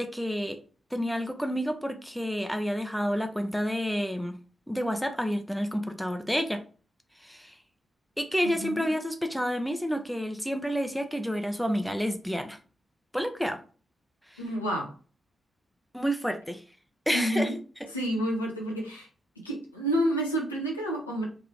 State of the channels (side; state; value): both; normal; correlation 0.86